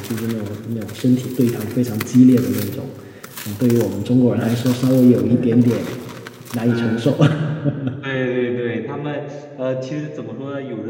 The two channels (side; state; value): both; identical; correlation 1.00